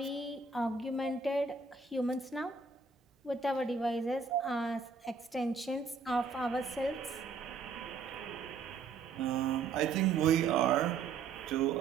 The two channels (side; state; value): left; quieter; 5.0 dB